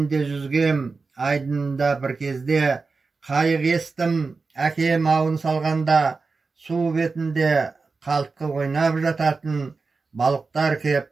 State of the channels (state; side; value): quieter; left; 4.3 dB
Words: де жүзгем айдынында бір кезде, қайық естім әкем ауын салғанда, су бетінде қалтқы ойнап жататын, балықтар кеп